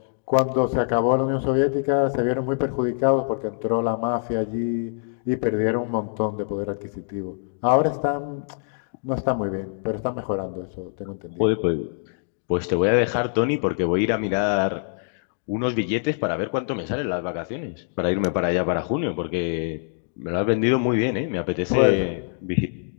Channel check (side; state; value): right; silent; digital silence